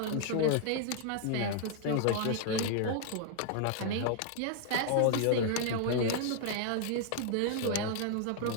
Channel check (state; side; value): different; both; correlation 0.00